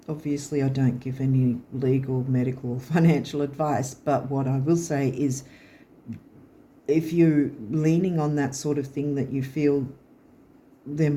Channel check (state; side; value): identical; both; correlation 1.00